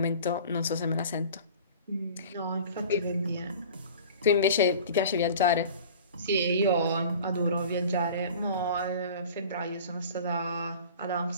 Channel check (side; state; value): both; inverted; correlation -0.42